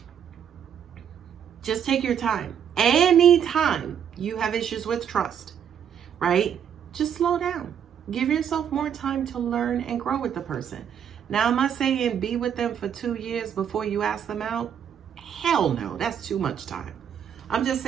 just take your time. Anytime you have issues with trust, right? Just slow down. Give yourself more time to learn and grow with the person. Now, am I saying be with them for 2 years before you ask them out? Hell no, that's too much time. I'm just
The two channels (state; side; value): quieter; left; 8.6 dB